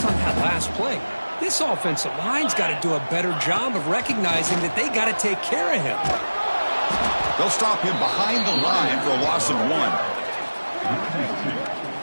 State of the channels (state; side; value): inverted; both; correlation -1.00